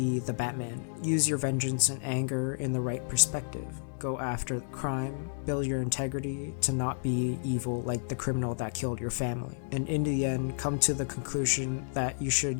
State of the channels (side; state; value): right; silent; digital silence